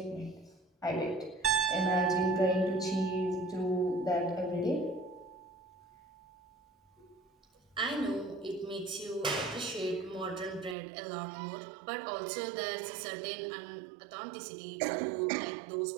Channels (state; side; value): drops out; left; at 10.8 s